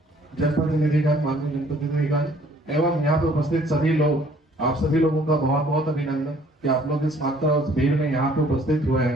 जनप्रतिनिधिगण, माननीय जनप्रतिनिधिगण एवं यहाँ पे उपस्थित सभी लोग, आप सभी लोगों का बहुत बहुत अभिनंदन कि आप लोग इस मात्रा उस भीड़ में यहाँ पे उपस्थित हुए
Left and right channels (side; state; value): both; normal; correlation 0.59